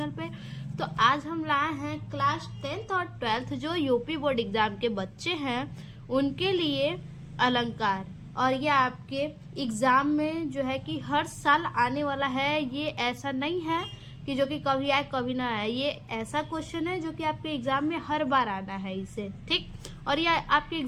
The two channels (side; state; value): both; identical; correlation 1.00